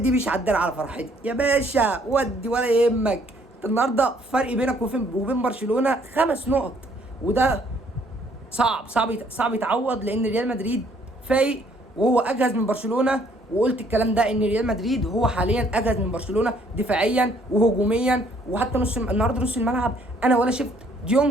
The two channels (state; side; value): normal; both; correlation 0.64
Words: مش عدل على فرحتي يا باشا، ودي ولا يهمك. انت النهارده فرق بينك وبين برشلونه 5 نقط، وده صعب يتعوض، لان ريال مدريد فايق وهو اجهز من برشلونه. وقلت الكلام ده ان ريال مدريد هو حاليا اجهز من برشلونه دفاعيا وهجوميا. وحتى النهارده نص الملعب انا ولا شفت